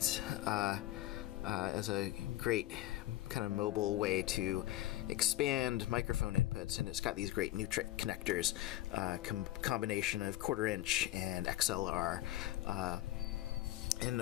as a great kind of mobile way to expand microphone inputs, and it's got these great Nutric connectors, combination of 1/4 inch and XLR,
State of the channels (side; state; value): right; quieter; 15.0 dB